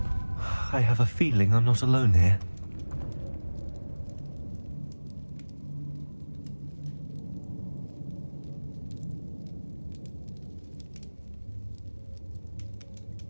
I have a feeling I'm not alone here.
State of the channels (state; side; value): inverted; both; correlation -1.00